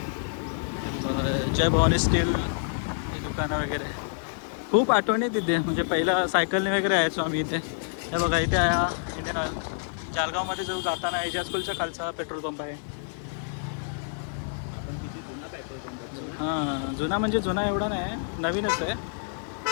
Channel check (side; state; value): right; silent; digital silence